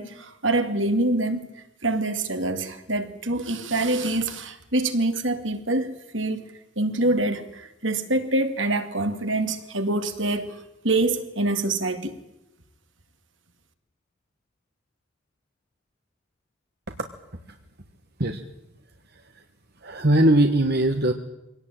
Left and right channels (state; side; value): normal; both; correlation 0.32